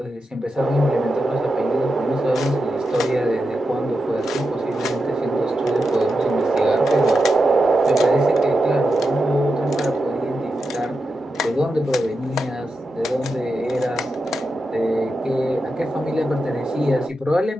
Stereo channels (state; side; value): normal; both; correlation 0.88